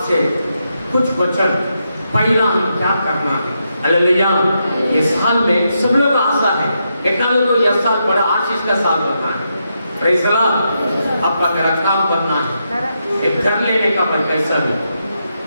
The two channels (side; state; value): both; inverted; correlation -0.83